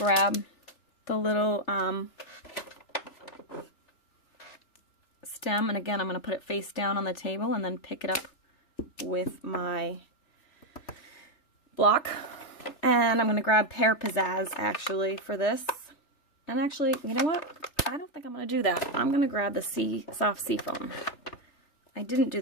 the little stem, and again I'm going to put it face down on the table and then pick it up with my block. And I'm going to grab Pear Pizzazz actually for this. And actually, you know what? I don't think I'm going to do that. I'm going to grab the soft seafoam. I didn't do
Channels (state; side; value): late; right; 3.4 ms